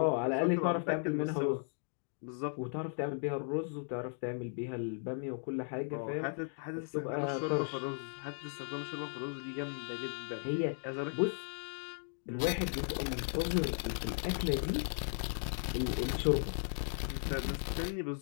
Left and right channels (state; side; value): silent; right; digital silence